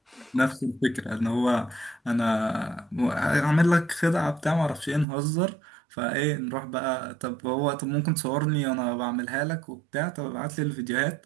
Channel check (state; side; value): drops out; left; at 5.1 s